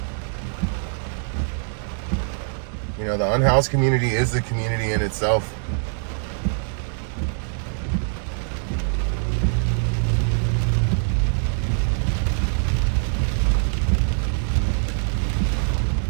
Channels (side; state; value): left; silent; digital silence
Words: You know, the unhoused community is a community in itself.